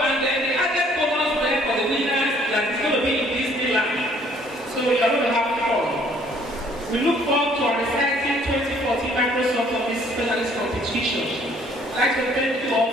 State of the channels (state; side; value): normal; both; correlation 0.60